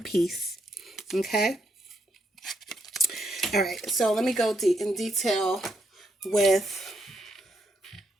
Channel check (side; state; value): both; normal; correlation 0.77